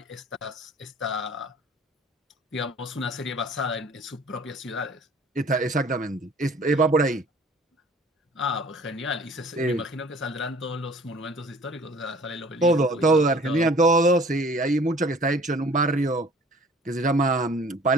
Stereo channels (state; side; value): normal; both; correlation 0.51